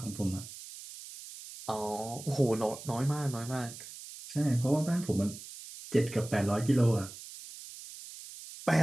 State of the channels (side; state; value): right; noise; hiss, 14 dB below the sound